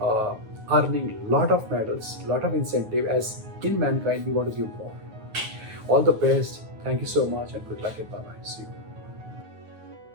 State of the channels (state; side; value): late; left; 9.4 ms